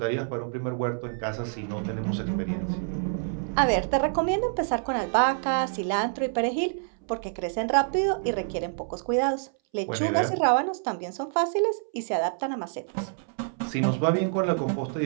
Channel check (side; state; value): left; silent; 60 dB below the other